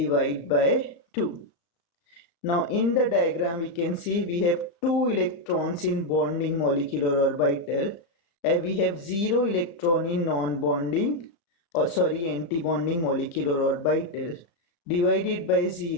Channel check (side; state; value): right; late; 35 ms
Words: by 2. Now in the diagram we can see we have 2 electrons in bonding molecular orbital and we have 0 electron in non-bonding anti-bonding molecular orbital. Divided by